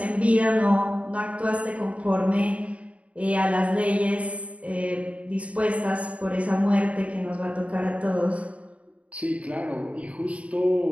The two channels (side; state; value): left; late; 0.065 ms